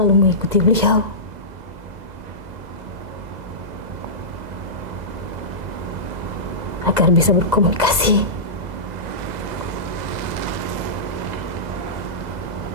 mengikuti beliau. Agar bisa berkomunikasi.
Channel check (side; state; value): left; late; 2.0 ms